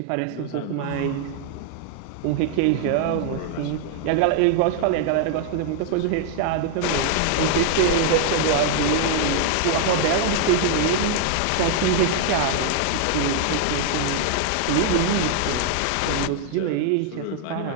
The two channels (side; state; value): both; different; correlation 0.00